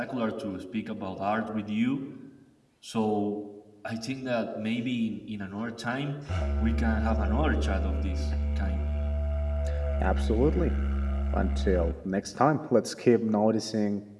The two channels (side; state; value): both; identical; correlation 1.00